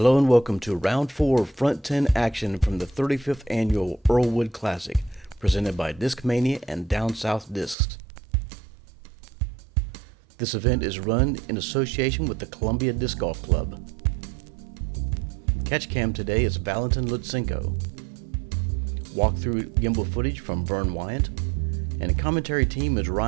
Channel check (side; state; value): left; drops out; at 7.8 s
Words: and welcome to Round 4 of Front 10 action from the 35th Annual Earlewood Classic, presented by Discmania and Down South Discs. This event is run in association with the Columbia Disc Golf Club. Catch cam today is Valentin Lutsenko. Walkthrough gimbal footage from Vern Weygandt, and a commentary team is